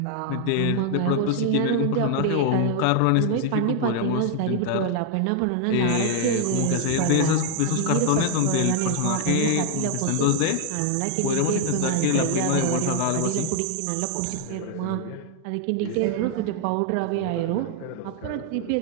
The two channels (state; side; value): different; both; correlation 0.00